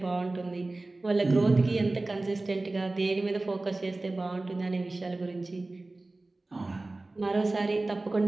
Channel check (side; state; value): left; quieter; 3.0 dB